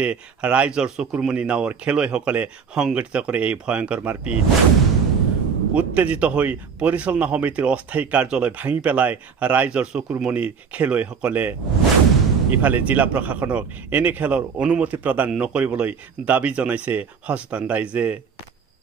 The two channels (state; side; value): quieter; left; 6.2 dB